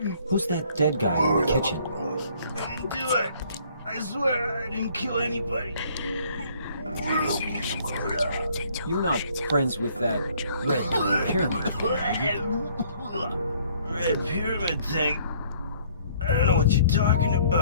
Who's that dead guy in the kitchen? I didn't do it. I swear I didn't kill anybody. You're not friends with that red pyramid thing, are you? Red pyramid thing? I don't know what you're talking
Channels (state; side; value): inverted; both; correlation -0.60